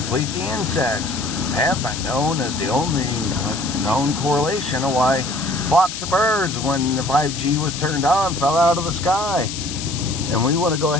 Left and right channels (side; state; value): left; noise; hiss, 7 dB below the sound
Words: the insects. Have been known as the only known correlation of why flocks of birds, when the 5G was turned on, fell out of the sky. And we want to go